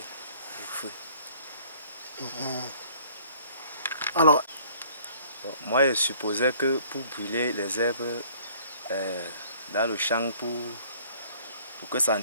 le feu. Alors, Bon, moi, je supposais que pour brûler les herbes dans le champ, pour que ça ne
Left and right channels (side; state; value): both; inverted; correlation -0.55